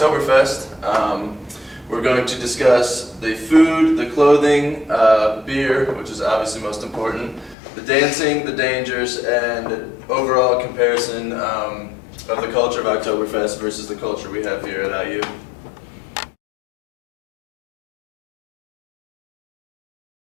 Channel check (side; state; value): right; drops out; at 7.6 s